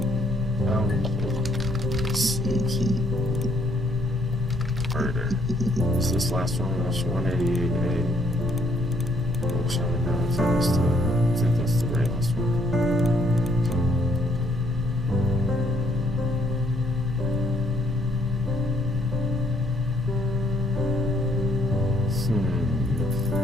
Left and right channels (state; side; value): normal; both; correlation 0.68